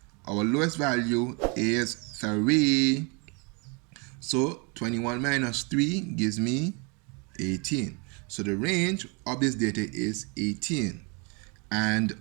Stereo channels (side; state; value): left; quieter; 32.3 dB